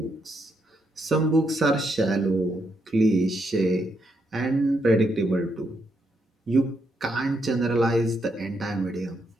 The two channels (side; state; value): both; normal; correlation 0.79